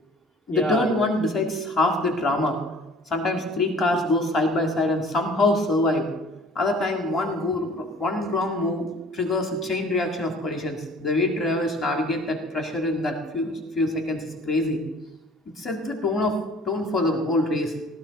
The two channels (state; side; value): normal; both; correlation 0.50